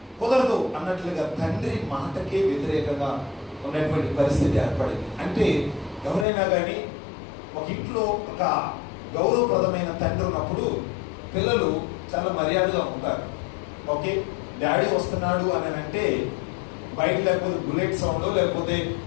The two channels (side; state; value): right; drops out; at 6.2 s